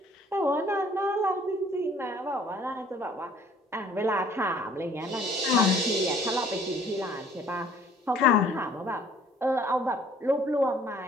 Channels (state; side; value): normal; both; correlation 0.57